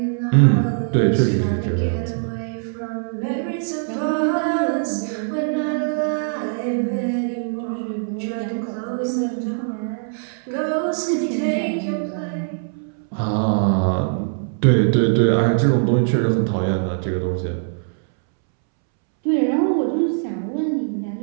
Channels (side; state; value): left; silent; 65 dB below the other